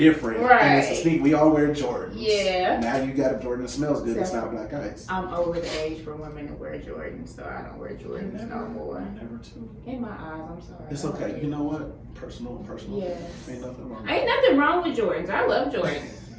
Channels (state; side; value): identical; both; correlation 1.00